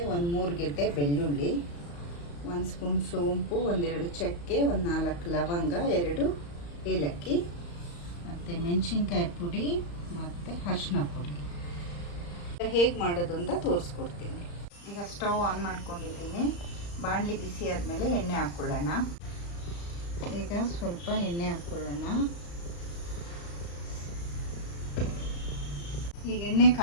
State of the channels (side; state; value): right; late; 35 ms